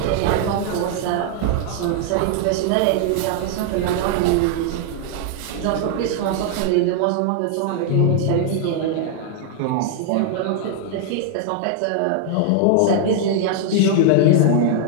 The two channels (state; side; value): different; both; correlation 0.00